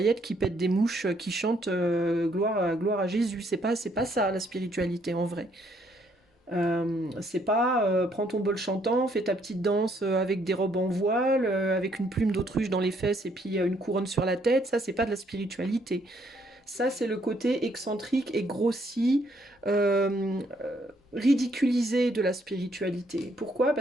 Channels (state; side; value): normal; both; correlation 0.69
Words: qui pètent des mouches, qui chantent gloire à Jésus. C'est pas ça la spiritualité en vrai. C'est pas prends ton bol chantant, fais ta petite danse avec des robes en voile, avec une plume d'autruche dans les fesses et puis une couronne sur la tête. Ça, c'est pas de la spiritualité. Ça, c'est le côté excentrique et grossi, ridiculisé de la spiritualité. Pourquoi?